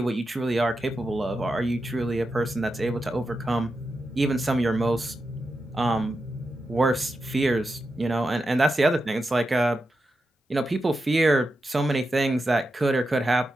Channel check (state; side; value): normal; both; correlation 0.89